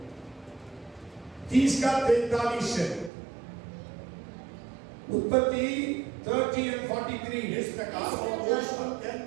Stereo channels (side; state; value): left; drops out; at 3.1 s